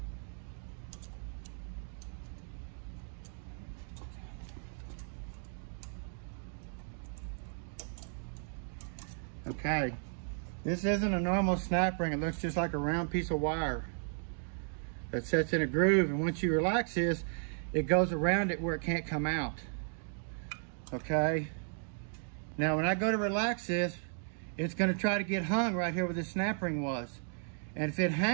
Okay, this isn't a normal snap ring. It looks just like a round piece of wire that sets in a groove, and once you relax this, it goes around it where it can't come out. Okay, now when I go to relax this, it's going to try to get hung right here where the snap ring was, and if it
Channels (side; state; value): left; silent; 54 dB below the other